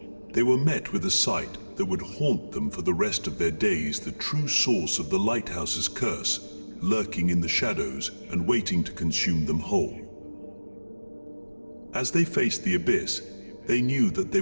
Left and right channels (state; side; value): inverted; both; correlation -1.00